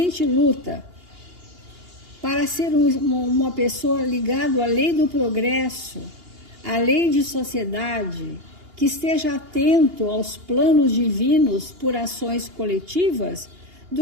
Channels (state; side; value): late; left; 2.8 ms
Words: luta para ser uma pessoa ligada à lei do progresso, à lei de sociedade, que esteja atento aos planos divinos por ações coletivas,